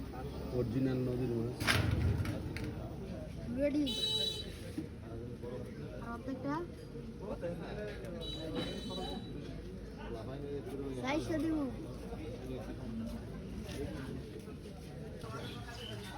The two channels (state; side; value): identical; both; correlation 1.00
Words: অরিজিনাল নদীর মাছ। রেডি প্রত্যেকটা সাইজটা দিব।